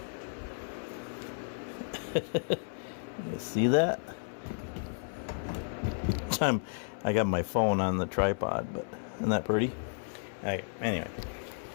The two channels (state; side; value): silent; right; 55 dB below the other